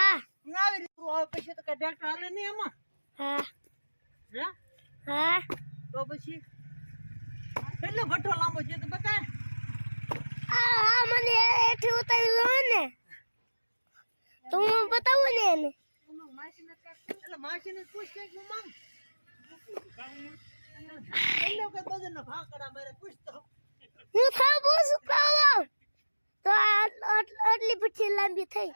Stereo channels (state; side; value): inverted; both; correlation -1.00